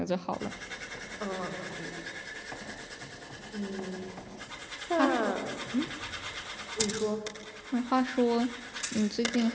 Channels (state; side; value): identical; both; correlation 1.00